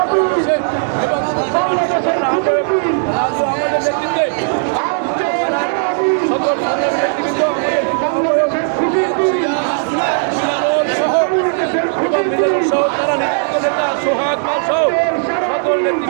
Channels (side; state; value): left; silent; digital silence